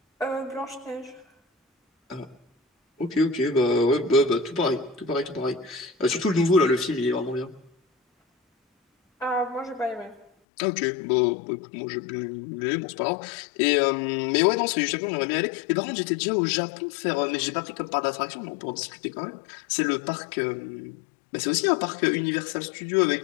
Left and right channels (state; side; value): drops out; right; at 10.2 s